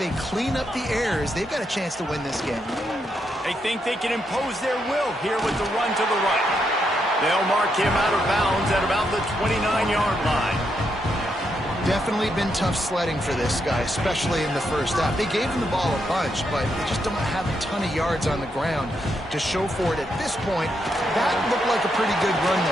clean up the errors, they've got a chance to win this game. They think they can impose their will here with the run to the right. They'll mark him out of bounds at about the 29-yard line. Definitely been tough sledding for this guy, especially in the first half. They gave him the ball a bunch, but they just don't have a ton of yards on the ground to show for it at this point. That looked like a pretty good run,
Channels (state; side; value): normal; both; correlation 0.80